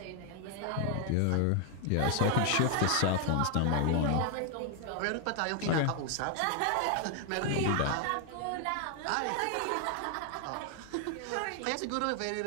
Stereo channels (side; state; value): both; different; correlation 0.00